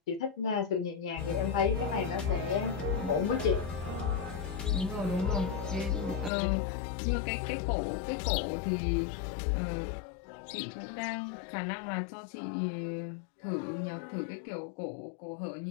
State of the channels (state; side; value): drops out; right; at 6.3 s